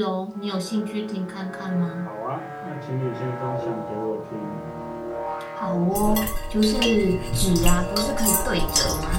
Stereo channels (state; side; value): identical; both; correlation 1.00